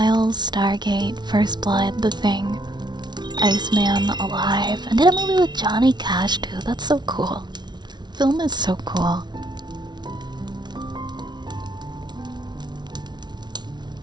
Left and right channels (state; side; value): late; left; 0.20 ms